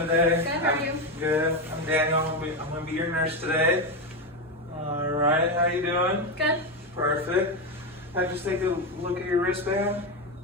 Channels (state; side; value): normal; both; correlation 0.12